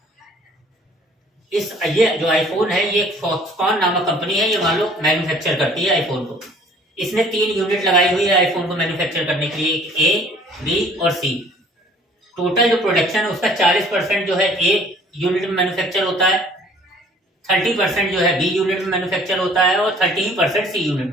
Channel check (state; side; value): normal; both; correlation 0.54